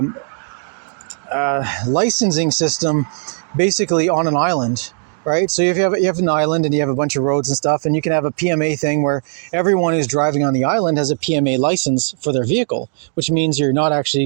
licensing system basically on an island, right? So if you have an island and you have a bunch of roads and stuff, and you can have a PMA thing where everyone who's driving on the island has a PMA license for their vehicle, which means you're not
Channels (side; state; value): left; silent; 68 dB below the other